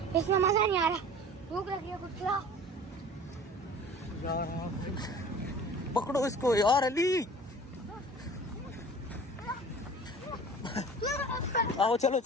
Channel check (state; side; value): normal; both; correlation 0.43